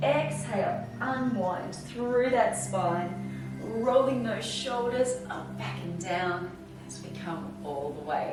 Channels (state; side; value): identical; both; correlation 1.00